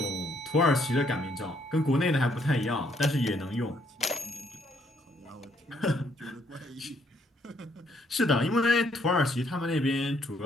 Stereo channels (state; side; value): normal; both; correlation 0.70